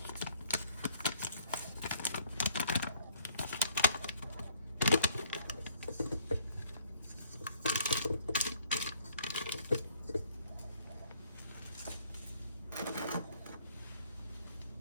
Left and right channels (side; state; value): both; inverted; correlation -0.62